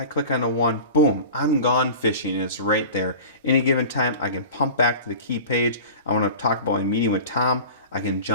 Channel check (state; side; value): inverted; both; correlation -0.37